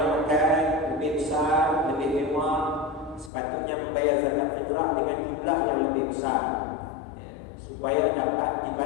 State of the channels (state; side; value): drops out; right; at 3.3 s